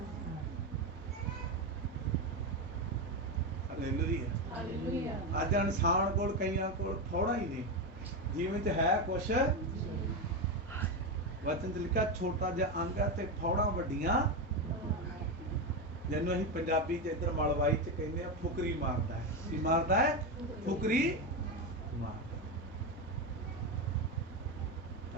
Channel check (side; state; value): both; normal; correlation 0.12